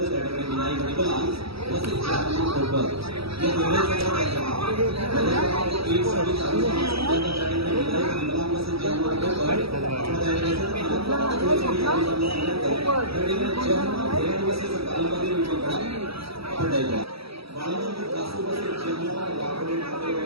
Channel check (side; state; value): left; late; 0.76 ms